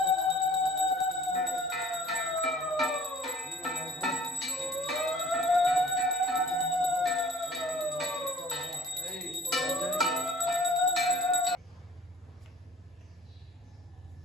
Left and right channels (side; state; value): both; normal; correlation 0.50